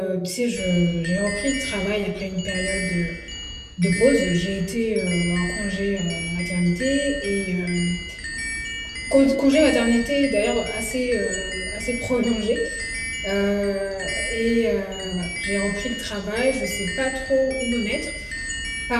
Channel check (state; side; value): identical; both; correlation 1.00